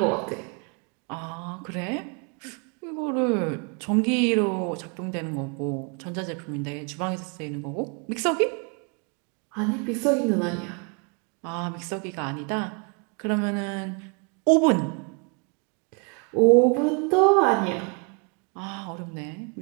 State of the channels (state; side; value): quieter; left; 34.7 dB